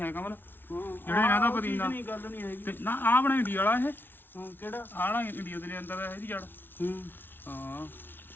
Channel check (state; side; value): late; right; 0.10 ms